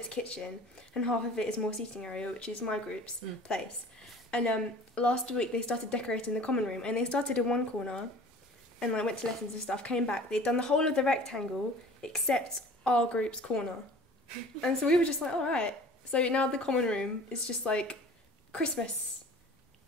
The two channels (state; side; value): normal; both; correlation 0.45